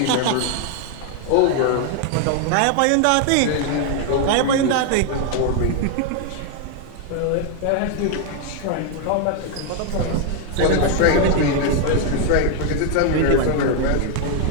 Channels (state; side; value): different; both; correlation 0.00